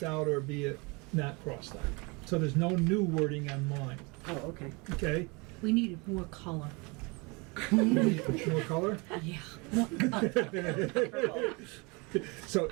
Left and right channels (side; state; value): left; quieter; 28.4 dB